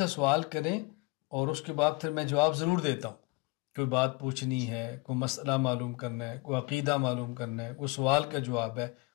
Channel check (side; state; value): right; quieter; 25.7 dB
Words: سوال کریں اور اس کے بعد پھر میں جواب ضرور دیتا ہوں۔ کوئی بات پوچھنی ہے، کوئی مسئلہ معلوم کرنا ہے، کوئی عقیدہ معلوم کرنا ہے، کوئی سوال کا جواب ہے